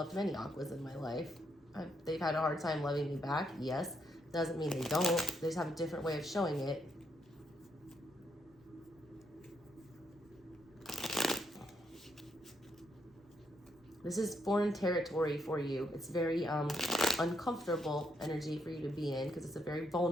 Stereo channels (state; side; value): normal; both; correlation 0.77